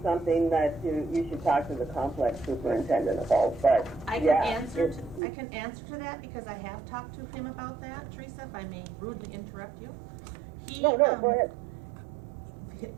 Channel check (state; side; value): drops out; left; at 5.2 s